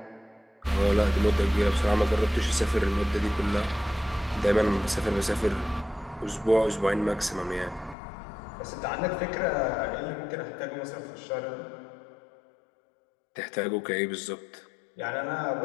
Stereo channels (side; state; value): right; drops out; at 8.0 s